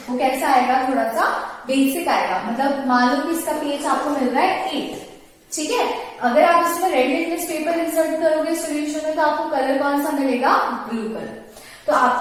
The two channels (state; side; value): identical; both; correlation 1.00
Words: वो कैसा आएगा, थोड़ा सा बेसिक आएगा। मतलब मान लो कि इसका पीएच आपको मिल रहा है 8, ठीक है। अगर आप इसमें रेड लिटमस पेपर इंसर्ट करोगे सोल्यूशन में तो आपको कलर कौन सा मिलेगा, ब्लू कलर। तो